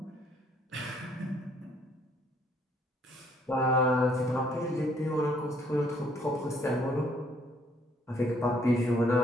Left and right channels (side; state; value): both; normal; correlation 0.65